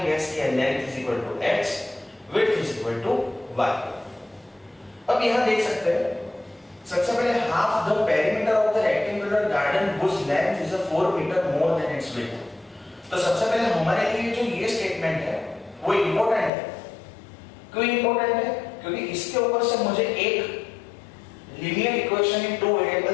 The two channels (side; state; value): right; drops out; at 16.5 s